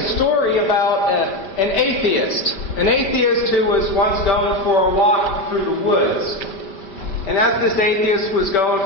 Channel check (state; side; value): late; right; 5.1 ms